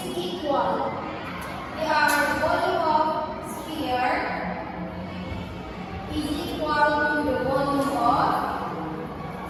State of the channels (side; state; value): both; identical; correlation 1.00